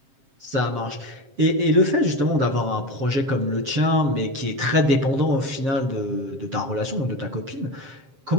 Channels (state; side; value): late; left; 7.5 ms